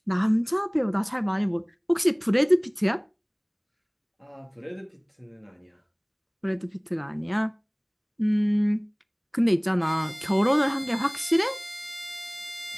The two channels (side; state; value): both; identical; correlation 1.00